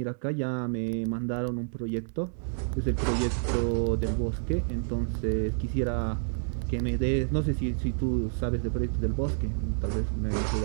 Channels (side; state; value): left; silent; digital silence